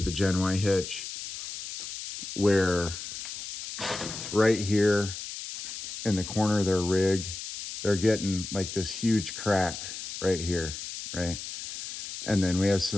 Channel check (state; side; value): noise; left; hiss, 9 dB below the sound